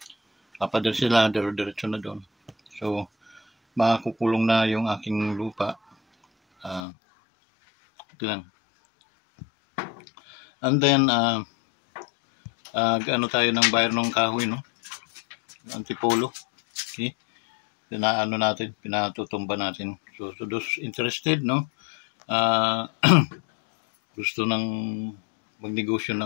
Papader sila, diretso na doon. So makukulong na yung aking lupa. Ito lang. And then ano tayo ng bayar ng kahoy, no? Antipolo. Okay? Pinatutumba natin. So those interested, no? Gusto ng magnegosyo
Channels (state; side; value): drops out; right; at 6.8 s